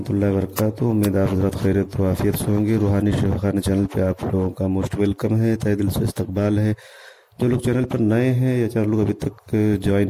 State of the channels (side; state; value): both; identical; correlation 1.00